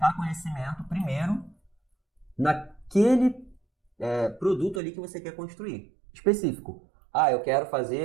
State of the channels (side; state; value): left; drops out; at 4.8 s